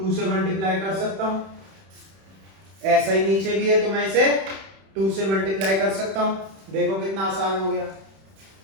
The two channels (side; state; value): left; late; 31 ms